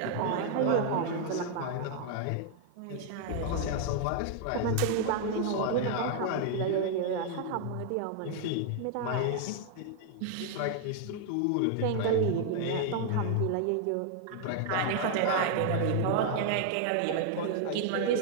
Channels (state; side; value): different; both; correlation 0.00